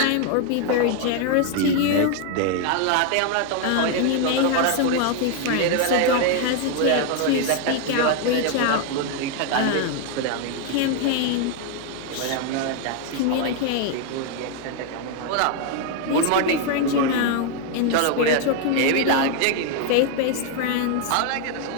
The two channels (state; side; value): different; both; correlation 0.01